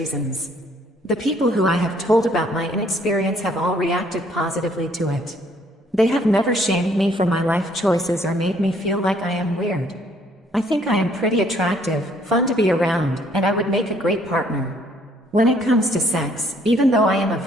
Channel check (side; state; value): both; normal; correlation 0.64